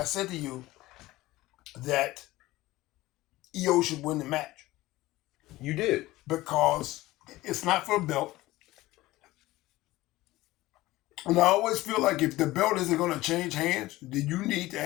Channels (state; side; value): quieter; right; 17.9 dB